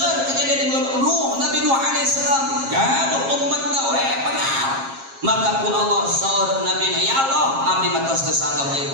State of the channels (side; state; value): left; late; 7.4 ms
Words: kejadian di bulan Nuh, Nabi Nuh alaihissalam gaduh umatna we pengal. Maka ku Allah saur Nabi na, ya Allah abdi mah tos teu sanggap ieu